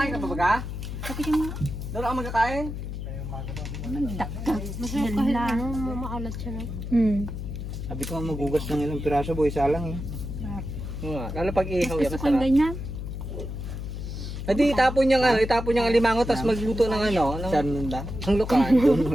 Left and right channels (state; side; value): noise; left; hum, 6 dB below the sound